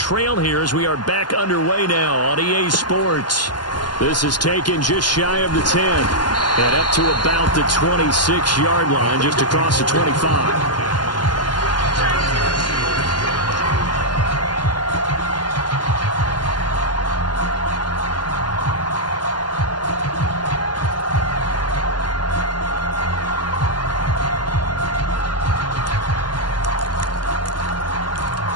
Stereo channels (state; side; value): late; right; 0.71 ms